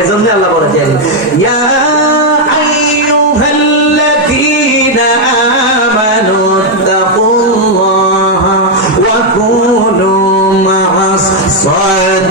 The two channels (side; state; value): both; normal; correlation 0.01